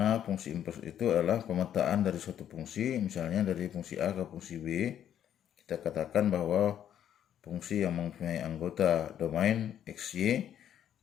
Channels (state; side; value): quieter; right; 10.1 dB